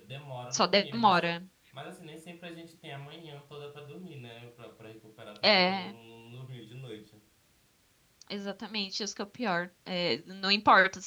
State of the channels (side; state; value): both; identical; correlation 1.00